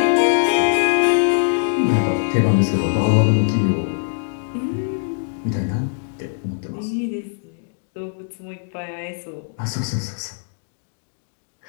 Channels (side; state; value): right; silent; digital silence